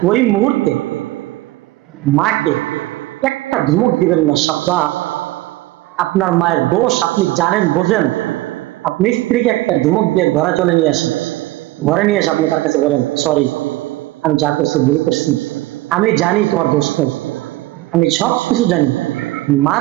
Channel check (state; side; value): quieter; left; 18.0 dB